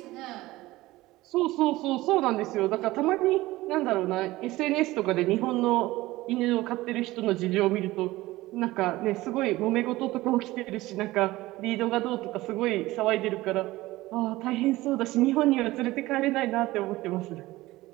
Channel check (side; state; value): left; quieter; 18.3 dB